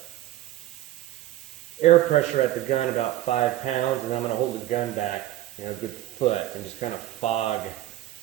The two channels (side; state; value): left; quieter; 14.5 dB